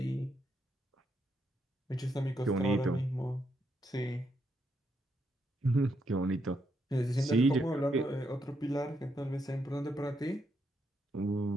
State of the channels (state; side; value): normal; both; correlation 0.79